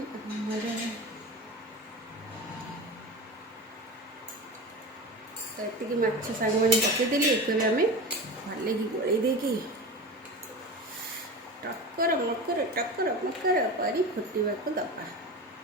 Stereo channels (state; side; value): normal; both; correlation 0.29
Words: अमर तो ये माछ सांग मैंने पकईदेली एक आम भले कि गोल देकी टकर मकर परी फुटवा को दबा